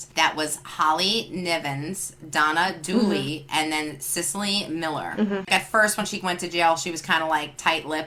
That was Holly Nivens, Donna Dooley, and then Cicely Miller. At first, when she went to jail, she was kind of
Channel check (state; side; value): identical; both; correlation 1.00